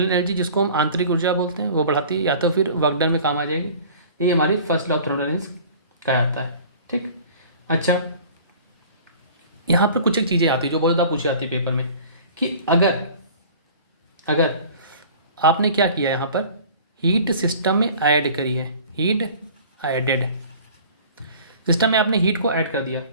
एनर्जी, जिसको हम आंतरिक ऊर्जा बोलते हैं, वो बढ़ाती है या तो फिर वर्क डन में काम आ जाएगी। ये हमारी फर्स्ट लॉ ऑफ थर्मोडायनेमिक्स कहा जाता है। ठीक, अच्छा यहाँ पर कुछ एक चीज़ें आती है जो बहुत ज़्यादा पूछी जाती है पेपर में कि अगर आपने क्या किया यहाँ पर, हीट सिस्टम में ऐड करी है, हीट एडेड, सिस्टम में आपने हीट को ऐड कर दिया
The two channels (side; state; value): both; inverted; correlation -0.46